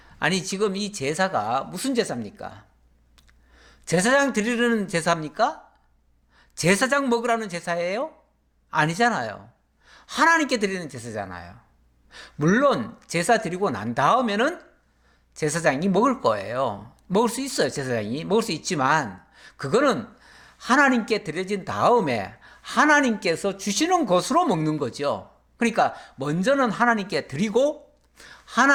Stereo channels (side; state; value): both; identical; correlation 1.00